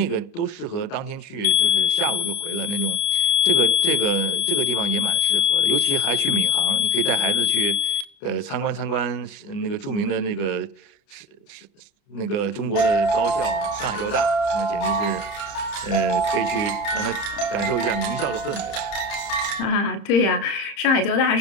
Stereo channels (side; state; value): right; late; 30 ms